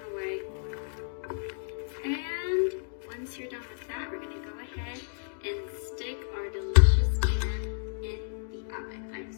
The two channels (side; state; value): right; silent; digital silence